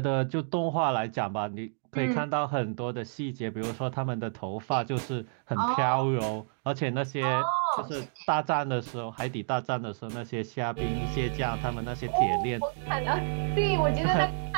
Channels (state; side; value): silent; left; digital silence